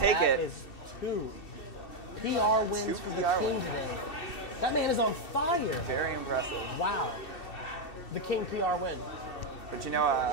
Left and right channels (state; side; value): late; right; 2.7 ms